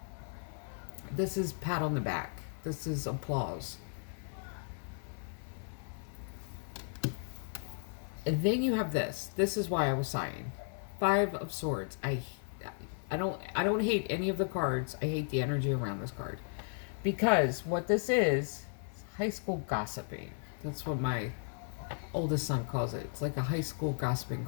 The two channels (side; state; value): right; silent; 54 dB below the other